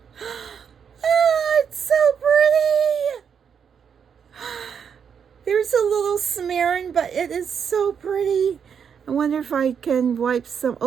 Oh, it's so pretty. There's a little smearing, but it is so pretty. I wonder if I can wipe some.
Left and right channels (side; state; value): left; quieter; 7.2 dB